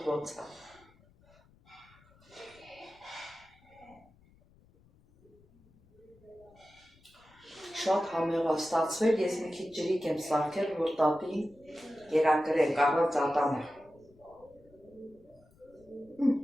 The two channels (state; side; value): noise; left; rumble, 29 dB below the sound